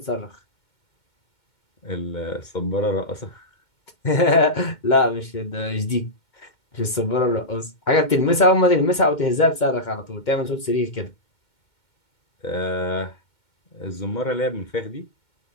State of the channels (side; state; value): right; late; 2.2 ms